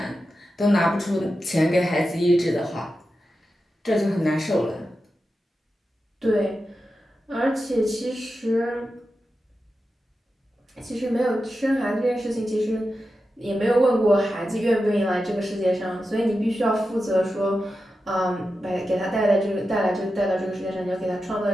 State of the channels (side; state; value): both; normal; correlation 0.91